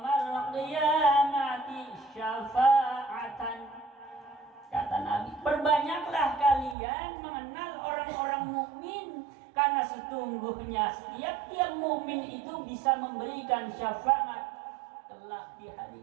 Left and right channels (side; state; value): left; drops out; at 6.8 s